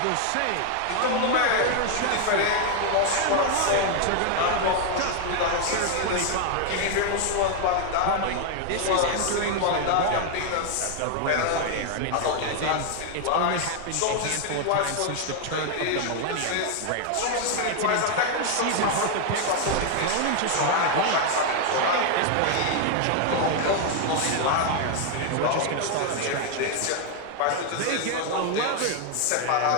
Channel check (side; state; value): both; different; correlation 0.00